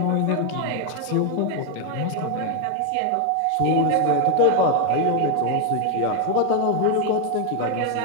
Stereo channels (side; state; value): both; different; correlation 0.01